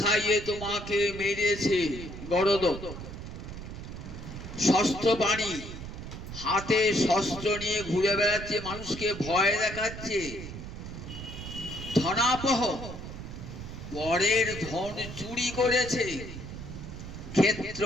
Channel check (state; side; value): noise; right; rumble, 10 dB below the sound